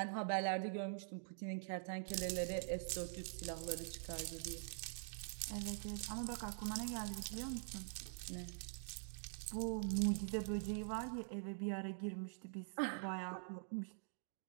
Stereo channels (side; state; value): left; silent; digital silence